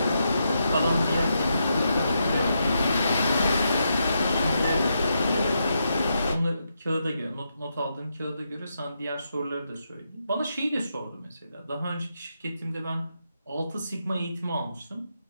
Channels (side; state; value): both; inverted; correlation -0.83